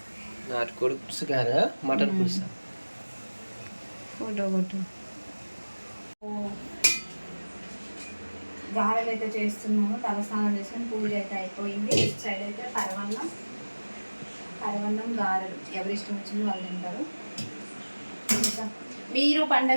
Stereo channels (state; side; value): inverted; both; correlation -1.00